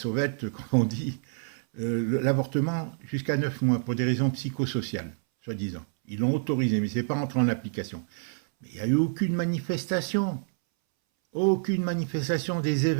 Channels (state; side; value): silent; left; 60 dB below the other